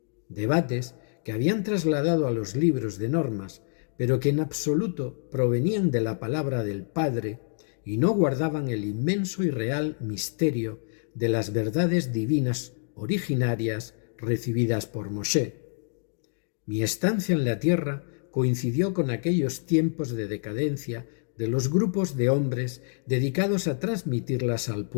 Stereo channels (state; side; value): silent; right; 59 dB below the other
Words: debates que habían trasladado a los libros de normas, pero que en absoluto provenían de la palabra del Padre y no guardaban el inmenso y real misterio de las verdades divinas originarias recibidas por Moshe. Mi estancia en la tierra coincidió con aquellos tiempos de decadencia de los grupos de hombres dedicados a transmitirlas al